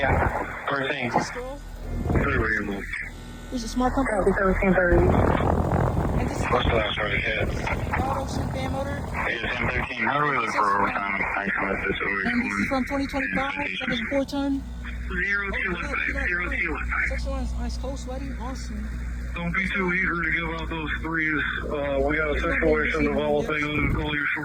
we're saying. pistol. There's a smart compass. And this is What's the last word it hit? ROTARY fan motor. It's M13. How do we look for overtime? I come with this over. And this is from 2025. That is 4-ton. 0215. 0215. Section 1 is ice cold, sweaty, awesome. Don't be too eager to give out those threes. We got a situation developing. I'm gonna call you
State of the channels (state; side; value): identical; both; correlation 1.00